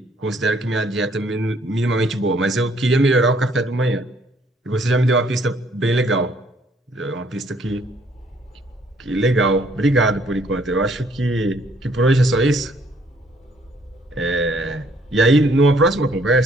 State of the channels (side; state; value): both; normal; correlation 0.64